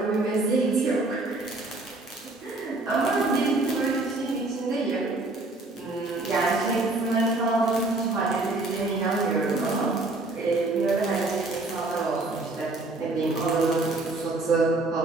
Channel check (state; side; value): quieter; left; 3.1 dB